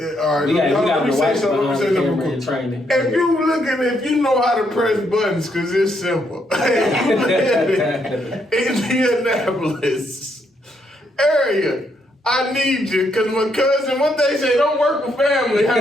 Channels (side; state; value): both; normal; correlation 0.75